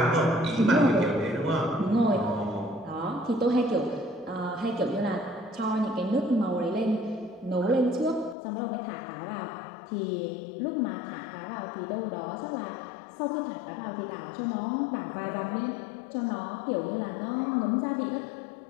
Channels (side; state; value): right; drops out; at 8.3 s